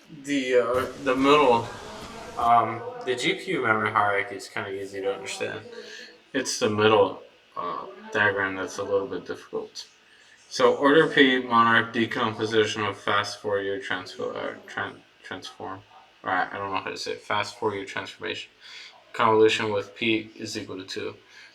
The middle, the GPU memory hierarchy is kind of easy to understand. It's the middle diagram that's a little bit difficult. So order P, Monarch, decomposition of fast Fourier transform. Alright, I don't know how to say it. Fast Fourier transformation. Convolution with P is equal to 2.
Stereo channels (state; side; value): identical; both; correlation 1.00